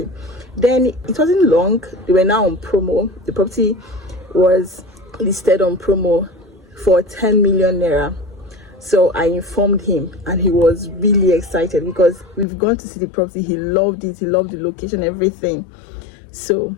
Then it wasn't long. They were now on promo. The property was listed on promo for 10 million naira. So I informed him, and he was really excited because we've gone to see the property. He loved it. He loved the location, everything. So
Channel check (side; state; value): right; drops out; at 12.5 s